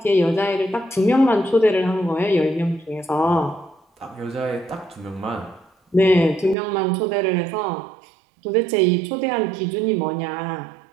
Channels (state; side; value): drops out; left; at 6.6 s